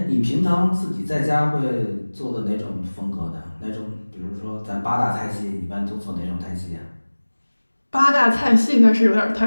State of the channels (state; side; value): inverted; both; correlation -1.00